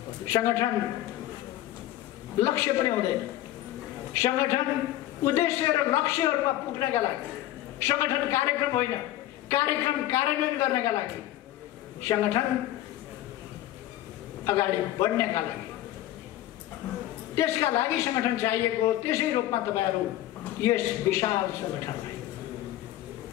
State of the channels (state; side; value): quieter; right; 14.3 dB